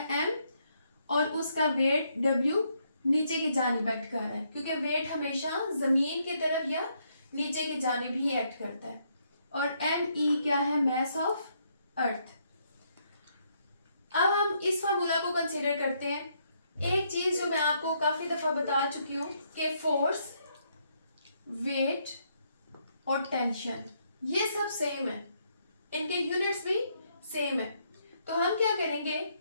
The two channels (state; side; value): inverted; both; correlation -0.74